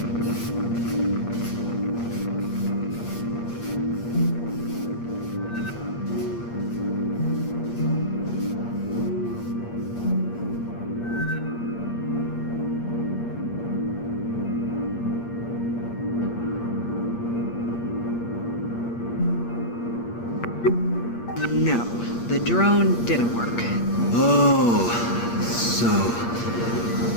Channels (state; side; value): late; right; 8.5 ms